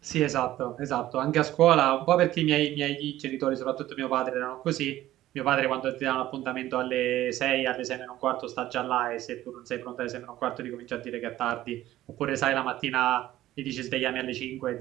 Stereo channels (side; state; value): left; quieter; 14.5 dB